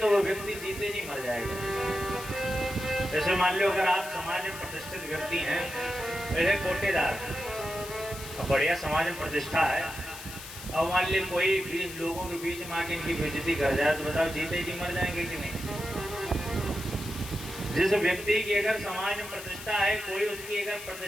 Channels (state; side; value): noise; left; hiss, 12 dB below the sound